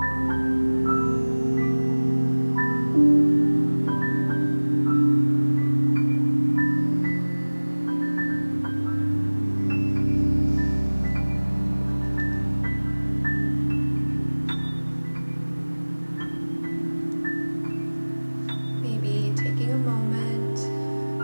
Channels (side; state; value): both; inverted; correlation -1.00